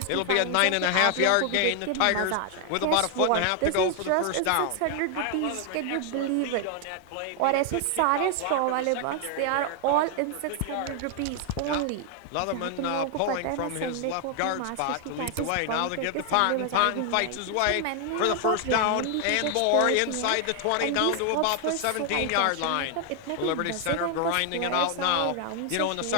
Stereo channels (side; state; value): both; different; correlation 0.00